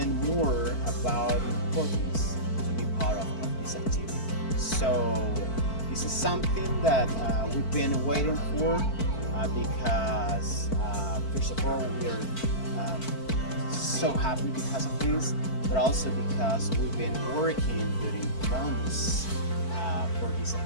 more about the importance to be part of this activity. So this is something that we've been waiting for because first of all, we're so happy because of this, but also because we've been working during months for this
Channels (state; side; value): late; right; 4.5 ms